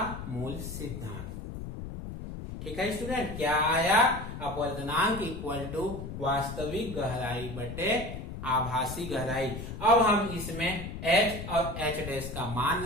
मूल सिद्धांत। ठीक है स्टूडेंट, क्या आया, अपवर्तनांक इक्वल टू वास्तविक गहराई बटे आभासी गहराई। अब हम इसमें H और H डैश का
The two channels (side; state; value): left; noise; rumble, 8 dB below the sound